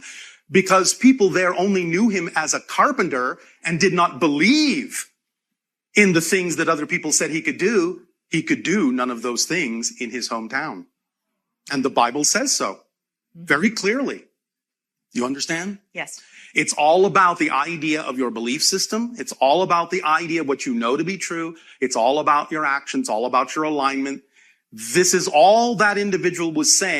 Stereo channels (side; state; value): both; identical; correlation 1.00